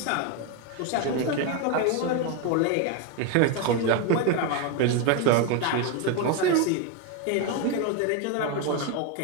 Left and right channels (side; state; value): both; different; correlation 0.02